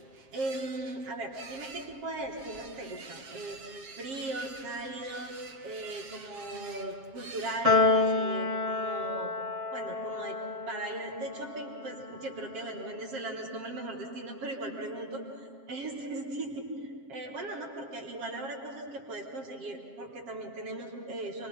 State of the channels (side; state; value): left; late; 7.4 ms